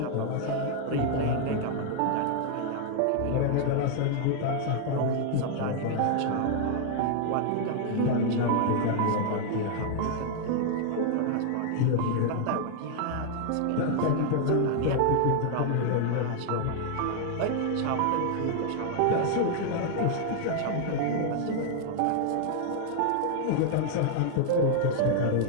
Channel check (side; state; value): both; different; correlation -0.01